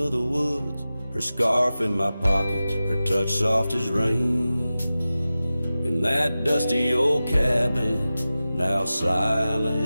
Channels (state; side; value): inverted; both; correlation -0.95